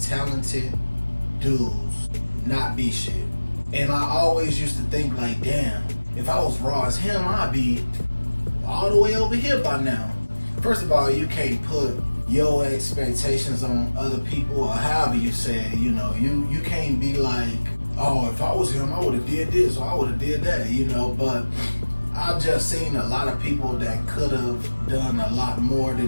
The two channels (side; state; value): both; inverted; correlation -1.00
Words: dudes not be shit. And I always used to think like, damn, if I was raw as him, I'd be all the way over here by now. First of all, you can't put your expectations on other people or however you say it, you can't be like, oh, if I was him, I would have did this or I would have did that, but I've just seen a lot of people that could have done a lot more